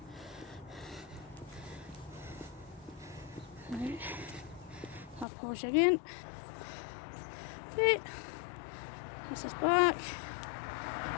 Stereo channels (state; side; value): drops out; right; at 5.2 s